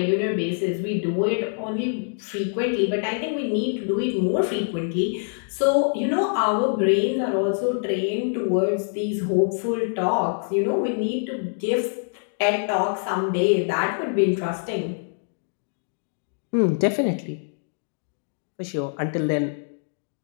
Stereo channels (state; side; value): silent; right; digital silence